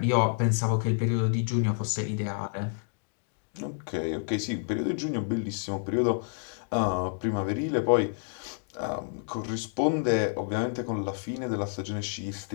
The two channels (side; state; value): right; silent; digital silence